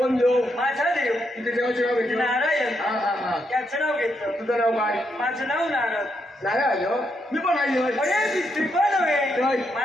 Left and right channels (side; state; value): both; normal; correlation 0.79